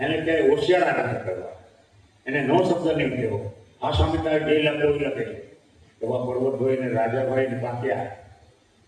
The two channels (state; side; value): identical; both; correlation 1.00